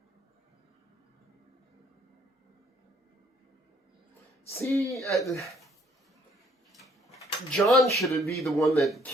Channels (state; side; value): normal; both; correlation 0.63